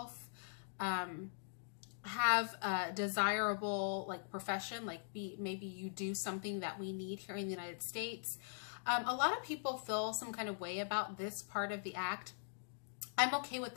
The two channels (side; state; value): right; silent; digital silence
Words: have a desirable profession, maybe you do something that we need here in the United States. A lot of people feel some kind of way about this part of the act. I'm okay with